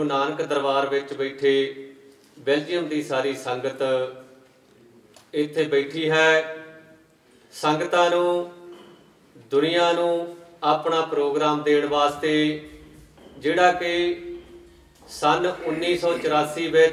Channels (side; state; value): both; identical; correlation 1.00